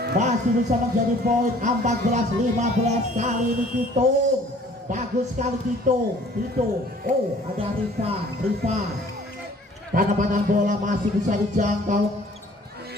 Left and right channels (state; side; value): normal; both; correlation 0.53